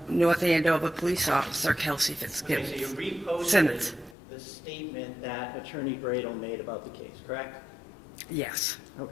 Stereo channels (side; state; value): right; drops out; at 4.2 s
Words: Andover Police Officer Kelsey Okay, Fitzsimmons. so you reposted Simmons. the statement that Attorney Bradle made about the case, correct? Yes. Okay.